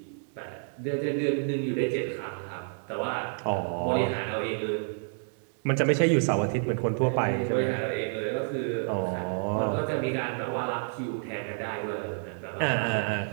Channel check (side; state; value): left; silent; 58 dB below the other